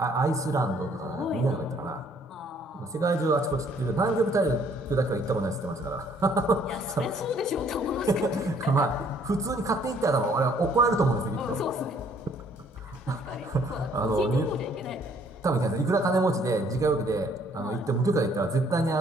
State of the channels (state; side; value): normal; both; correlation 0.62